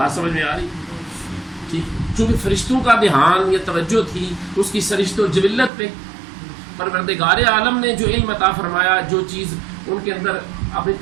سمجھ میں آ رہی؟ ٹھیک، چونکہ فرشتوں کا دھیان یا توجہ تھی اس کی سرشت و جبلت پہ، پروردگار عالم نے جو علم عطا فرمایا، جو چیز ان کے اندر اپنی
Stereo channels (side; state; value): left; drops out; at 5.7 s